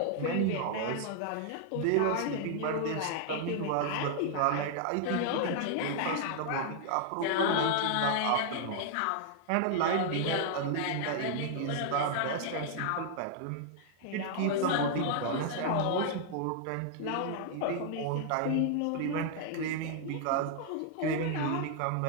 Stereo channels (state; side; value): different; both; correlation -0.01